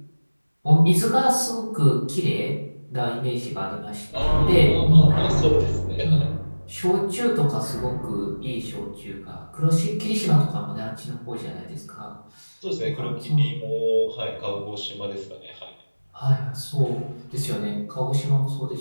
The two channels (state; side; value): inverted; both; correlation -1.00